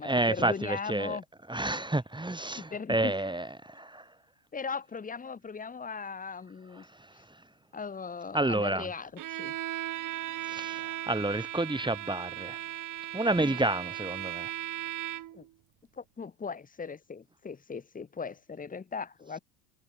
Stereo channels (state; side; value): normal; both; correlation 0.33